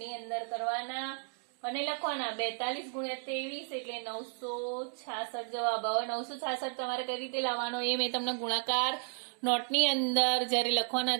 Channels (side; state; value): left; silent; 56 dB below the other